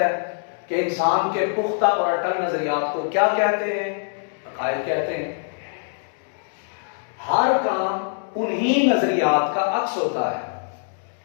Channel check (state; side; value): silent; right; 63 dB below the other